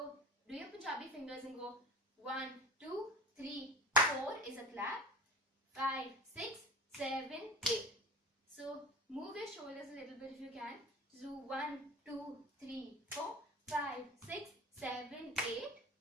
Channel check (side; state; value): both; normal; correlation 0.35